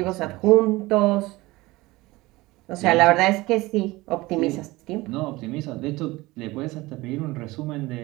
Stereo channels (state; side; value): quieter; left; 20.5 dB